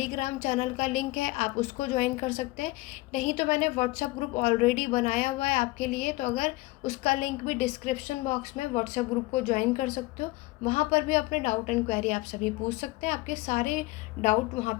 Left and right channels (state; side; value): quieter; right; 21.0 dB